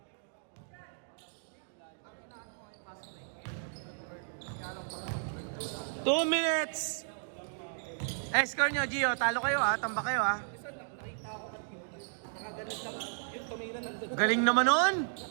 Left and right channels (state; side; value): silent; left; digital silence